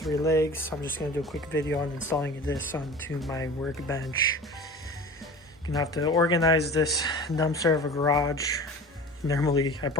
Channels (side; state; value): both; normal; correlation 0.38